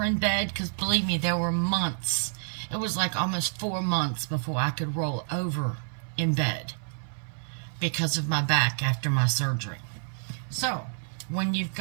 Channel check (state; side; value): silent; left; 59 dB below the other